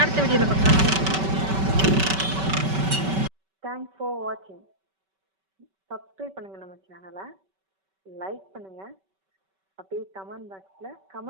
அடுத்த வீடியோவில் பார்க்கலாம். தேங்க்ஸ் ஃபார் வாட்சிங். சப்ஸ்கிரைப் பண்ணுங்கள் நம்ம சேனலை, லைக் பண்ணுங்கள், அப்படியே கமெண்ட் பாக்ஸில்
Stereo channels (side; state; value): left; late; 5.2 ms